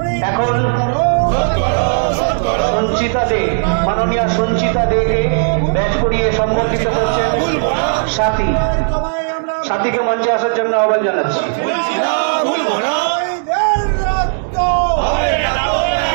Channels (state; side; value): silent; left; digital silence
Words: এখন সঞ্চিতা দে, মাননীয়া সঞ্চিতা দেকে ব্যাচ করিয়ে সম্বর্ধিত করছেন সাথী। সাথীকে মঞ্চে আসার জন্য আহ্বান জানাচ্ছি।